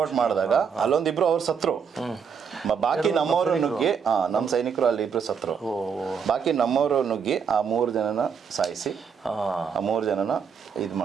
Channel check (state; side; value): quieter; left; 6.6 dB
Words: ಮಾಡಿದಾಗ ಅಲ್ಲೊಂದಿಬ್ರು ಅವ್ರು ಸತ್ರು. ಬಾಕಿ ನಮ್ಮವರು ನುಗ್ಗಿ ನಮ್ಮ ಸೈನಿಕರು ಅಲ್ಲಿ ಇಬ್ರು ಸತ್ರು. ಬಾಕಿ ನಮ್ಮವರು ನುಗ್ಗಿ ಆ 3 ಜನನ ಸಾಯಿಸಿ ಆ 3 ಜನನ ಇದು